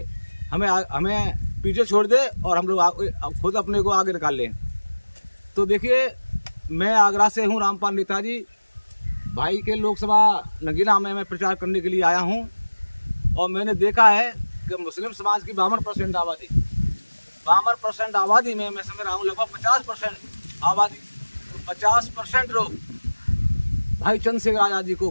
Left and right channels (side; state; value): both; inverted; correlation -1.00